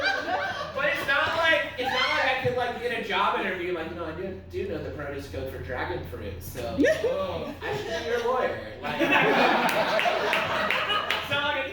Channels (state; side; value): identical; both; correlation 1.00